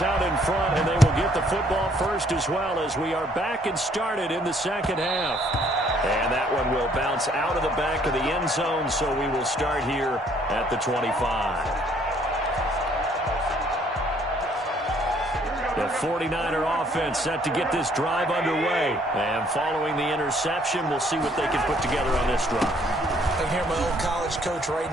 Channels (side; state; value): both; normal; correlation 0.63